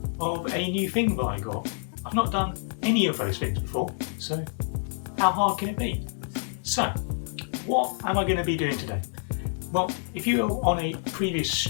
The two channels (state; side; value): silent; right; 58 dB below the other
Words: of a new thing that I got. I've not done any of those things before, so how hard can it be? So, what am I going to be doing today? Well, if you were on a previous